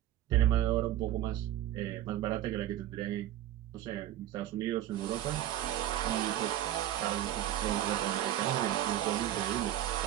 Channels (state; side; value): quieter; left; 12.5 dB